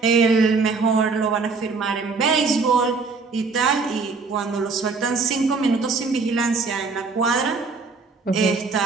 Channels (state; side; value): quieter; left; 4.5 dB